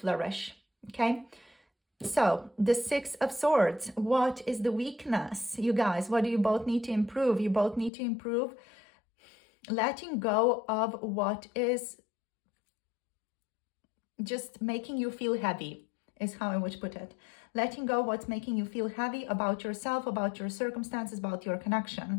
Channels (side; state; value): right; drops out; at 7.9 s